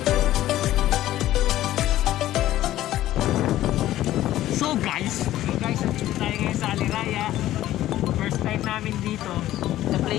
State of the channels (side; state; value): right; quieter; 14.1 dB